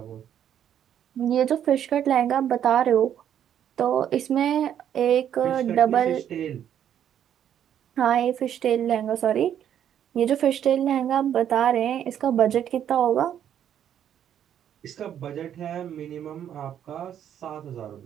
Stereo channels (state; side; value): quieter; left; 9.8 dB